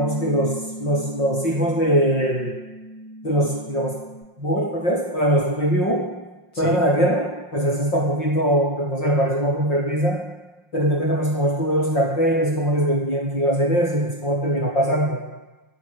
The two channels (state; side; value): late; right; 5.6 ms